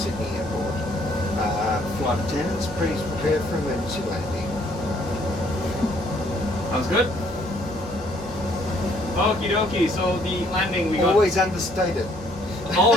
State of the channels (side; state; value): both; normal; correlation 0.65